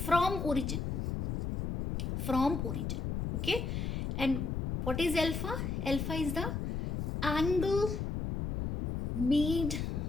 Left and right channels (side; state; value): left; noise; rumble, 2 dB below the sound